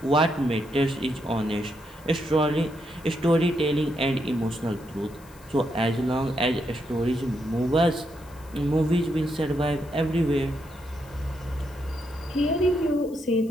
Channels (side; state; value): left; noise; hiss, 25 dB below the sound